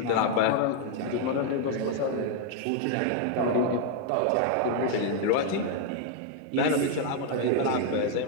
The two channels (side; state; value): both; different; correlation 0.00